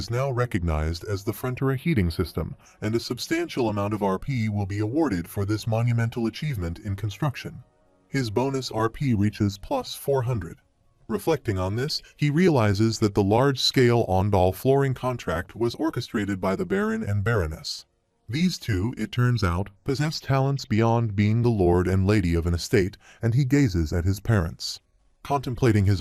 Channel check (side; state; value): both; identical; correlation 1.00